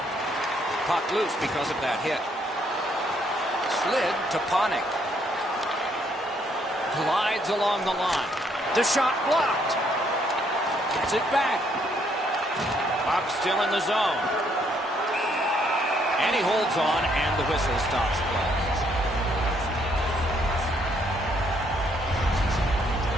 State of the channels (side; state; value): both; normal; correlation 0.70